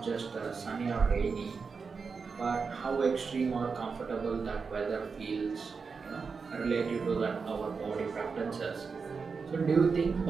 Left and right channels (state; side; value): quieter; left; 5.1 dB